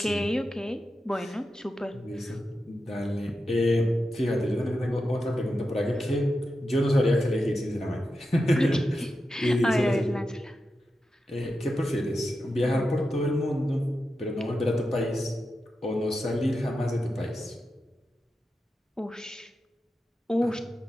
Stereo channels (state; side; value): normal; both; correlation 0.90